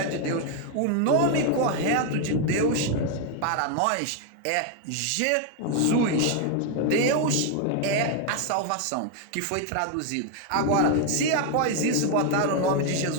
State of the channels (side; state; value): both; different; correlation 0.01